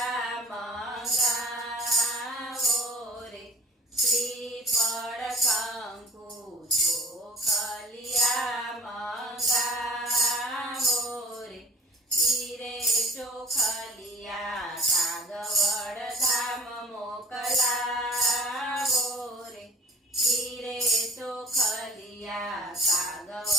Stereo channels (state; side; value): normal; both; correlation 0.47